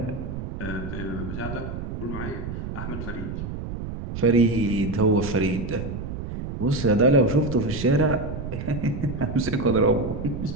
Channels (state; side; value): noise; right; rumble, 6 dB below the sound